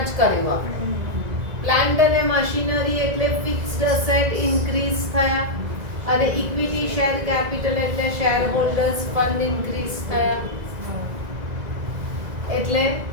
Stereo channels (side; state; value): left; late; 2.0 ms